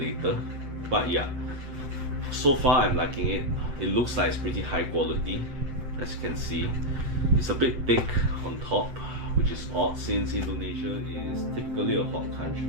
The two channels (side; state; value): left; late; 7.7 ms